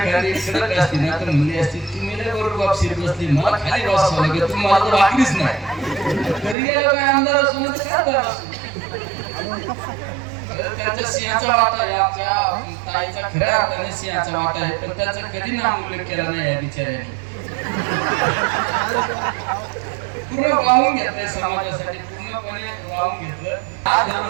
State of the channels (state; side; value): drops out; left; at 6.6 s